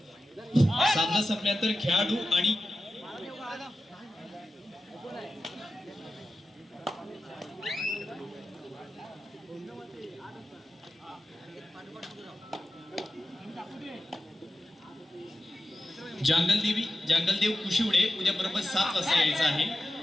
संपल्यानंतर खेळाडू आणि जंगलदेव कुशिवडे उद्या बरोबर 7 वाजता यायचं आहे.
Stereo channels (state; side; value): normal; both; correlation 0.92